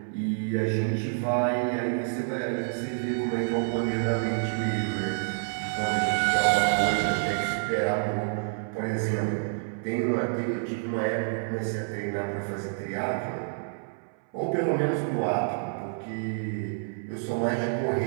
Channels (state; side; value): silent; left; 59 dB below the other